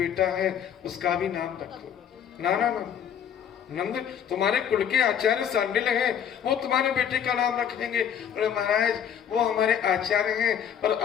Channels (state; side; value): quieter; right; 8.7 dB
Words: है, उसका भी नाम रखो। ना ना ना नंद, तुम्हारे कुल के आचार्य सांडिल हैं, वो तुम्हारे बेटे का नाम रखेंगे। अरे महाराज वो हमारे आचार्य हैं, पर